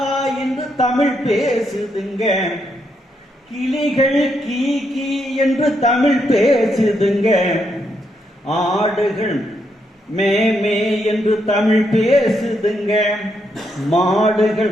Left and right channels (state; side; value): normal; both; correlation 0.79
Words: என்று தமிழ் பேசுதுங்க, கிளிகள் கீ கீ என்று தமிழ் பேசுதுங்க, ஆடுகள் மே மே என்று தமிழ் பேசுதுங்க,